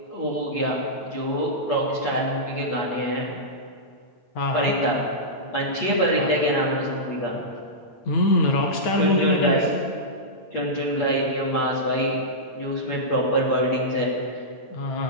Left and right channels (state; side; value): late; right; 8.5 ms